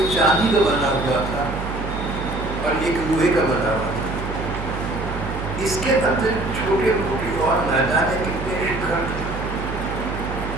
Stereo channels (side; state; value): right; noise; hum, 7 dB below the sound